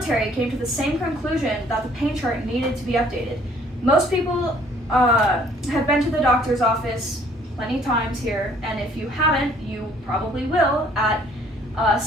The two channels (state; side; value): normal; both; correlation 0.59